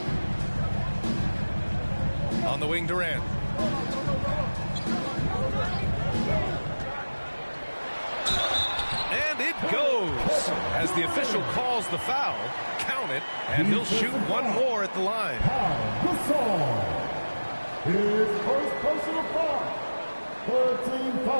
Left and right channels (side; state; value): both; inverted; correlation -1.00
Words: On the wing, Durant. And it goes. As the official calls the foul, count it, and he'll shoot one more at the line. Gasol. His first personal foul. 13